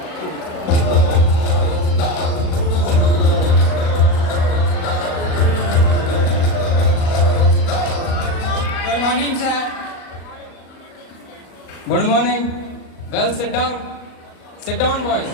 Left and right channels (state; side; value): late; right; 38 ms